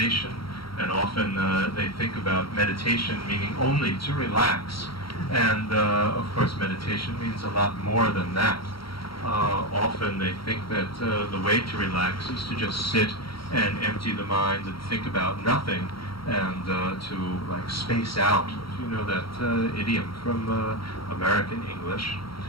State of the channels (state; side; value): late; right; 0.74 ms